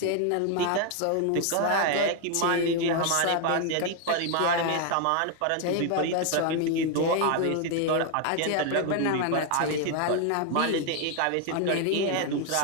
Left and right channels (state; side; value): different; both; correlation 0.01